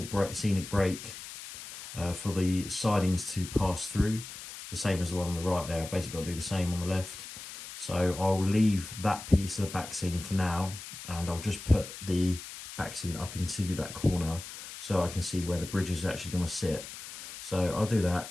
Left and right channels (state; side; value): noise; left; hiss, 12 dB below the sound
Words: scenic break for the sidings to pass through, the same as the one on the right there. I've basically got to do the same on the left. So I'll leave that piece of the back scene for now, and I'll just put the back scene up into that corner so I can see where the bridge is actually going to sit. So I'll do that